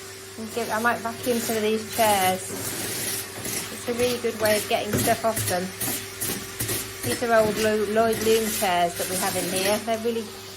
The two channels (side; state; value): both; identical; correlation 1.00